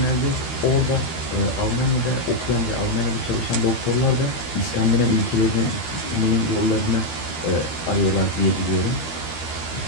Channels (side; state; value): right; late; 13 ms